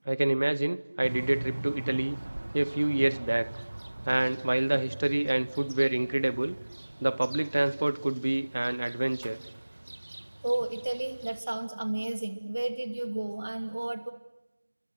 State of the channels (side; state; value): both; inverted; correlation -1.00